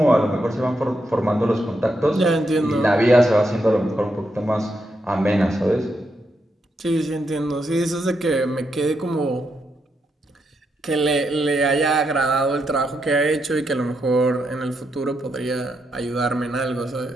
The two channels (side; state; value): both; normal; correlation 0.82